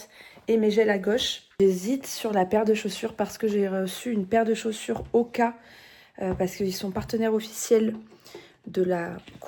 et mes gels à gauche. J'hésite sur la paire de chaussures parce que j'ai reçu une paire de chaussures Oka parce qu'ils sont partenaires officiels de la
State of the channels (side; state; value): both; identical; correlation 1.00